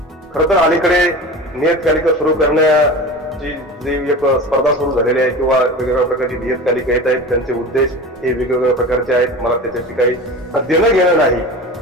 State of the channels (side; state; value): both; normal; correlation 0.33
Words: खरं तर अलीकडे नियतकालिक सुरू करण्याची जी एक स्पर्धा सुरू झालेली आहे, किंवा वेगवेगळ्या प्रकारची नियतकालिक येत आहेत, त्यांचे उद्देश हे वेगवेगळ्या प्रकारचे आहेत. मला त्याच्याशी काही देणं घेणं नाही,